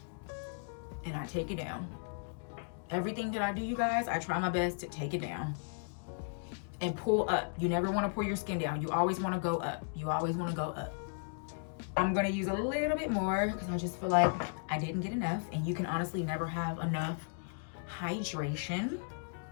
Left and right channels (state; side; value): silent; right; digital silence